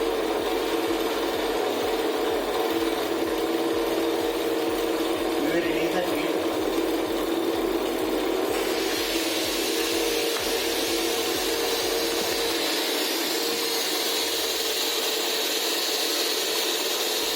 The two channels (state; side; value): identical; both; correlation 1.00